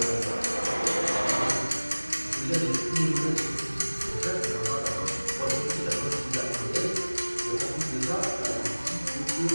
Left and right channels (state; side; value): inverted; both; correlation -1.00